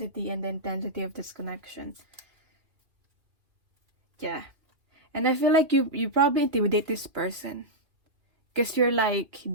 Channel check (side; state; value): left; late; 2.2 ms